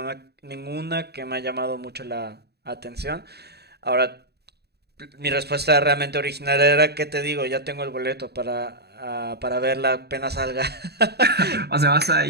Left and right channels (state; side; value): late; left; 0.48 ms